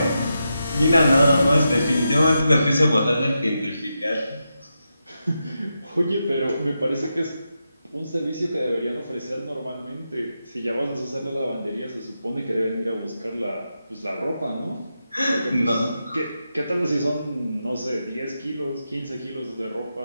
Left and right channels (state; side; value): inverted; both; correlation -0.87